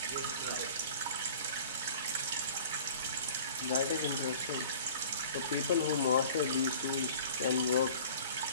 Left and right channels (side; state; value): both; inverted; correlation -0.45